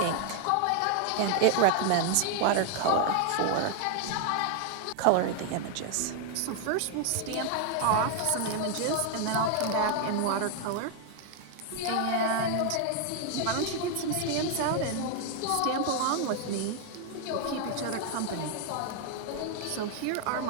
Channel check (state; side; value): different; both; correlation 0.00